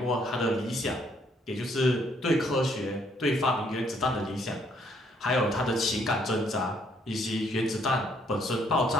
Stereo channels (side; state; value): both; normal; correlation 0.68